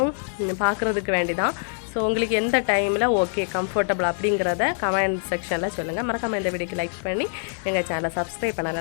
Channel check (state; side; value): silent; right; 62 dB below the other